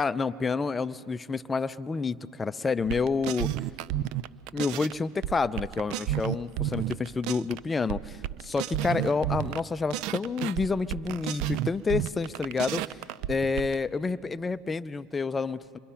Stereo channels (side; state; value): both; normal; correlation 0.69